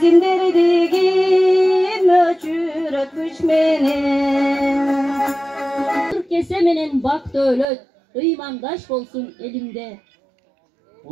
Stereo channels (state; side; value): drops out; left; at 7.7 s